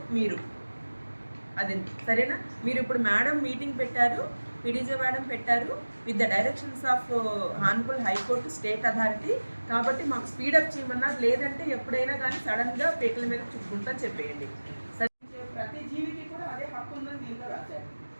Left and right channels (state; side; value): inverted; both; correlation -1.00